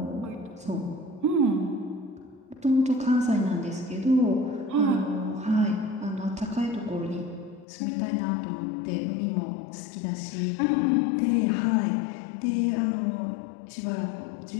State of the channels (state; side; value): drops out; right; at 7.7 s